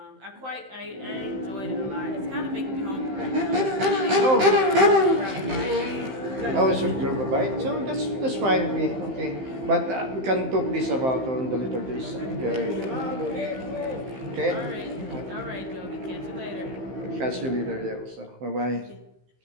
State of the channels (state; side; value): late; left; 15 ms